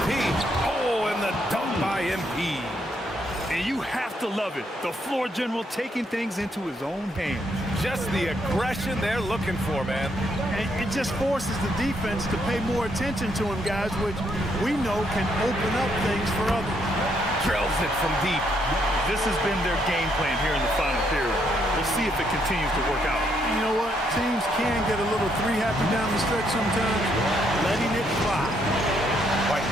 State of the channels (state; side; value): normal; both; correlation 0.74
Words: Oh, and the dunk by MP. And you have to love it. The floor general taking things into his own hands. Just the aggression they're looking for, man. And it just forces the defense to pay more attention to him, guys, which we know can open up things for others. Drills it from deep. This has been their game plan here in the final period. We'll see if it continues to work out. You know what? Teams can get a little three-happy down the stretch sometimes, letting it fly. White